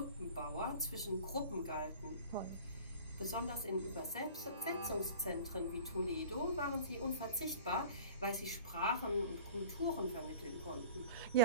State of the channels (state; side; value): inverted; both; correlation -0.42